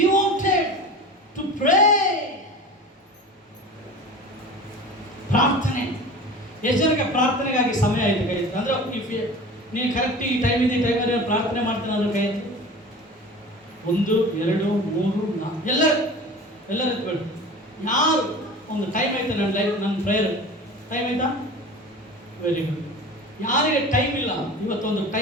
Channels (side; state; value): both; normal; correlation 0.36